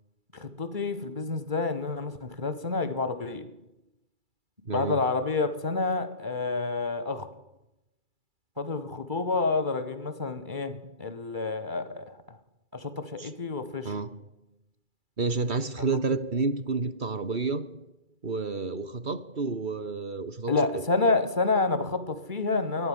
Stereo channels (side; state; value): left; late; 2.3 ms